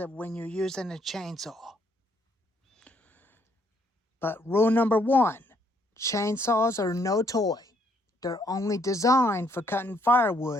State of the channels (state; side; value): normal; both; correlation 0.69